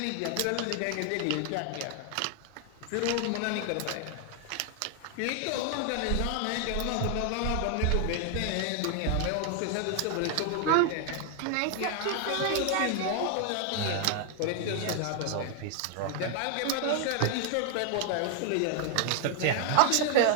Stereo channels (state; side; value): different; both; correlation 0.00